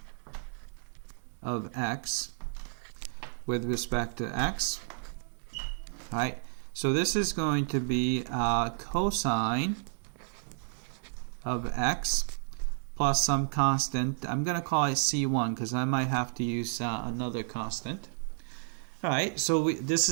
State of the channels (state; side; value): silent; left; digital silence